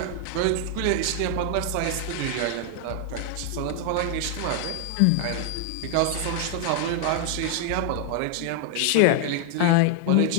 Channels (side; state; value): both; different; correlation 0.00